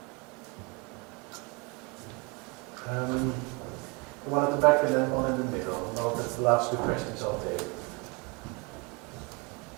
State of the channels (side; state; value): left; quieter; 28.6 dB